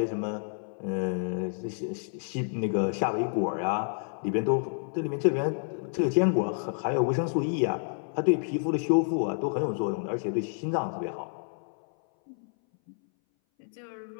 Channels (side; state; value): right; silent; 58 dB below the other